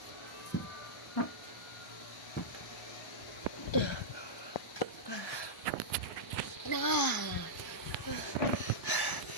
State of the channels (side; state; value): right; late; 1.0 ms